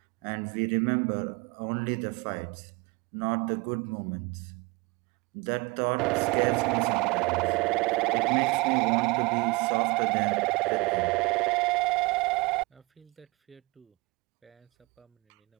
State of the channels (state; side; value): quieter; left; 25.1 dB